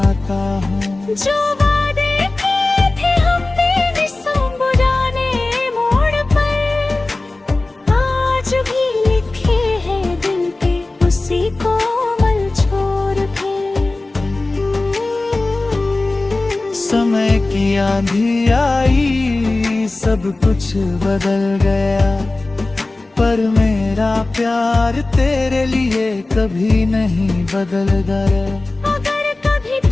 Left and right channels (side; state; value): right; quieter; 3.1 dB